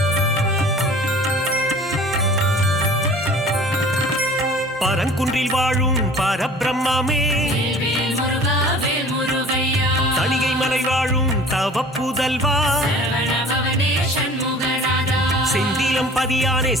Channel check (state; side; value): normal; both; correlation 0.46